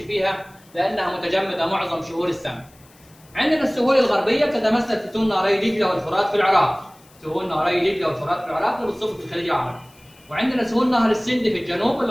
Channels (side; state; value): left; noise; hiss, 28 dB below the sound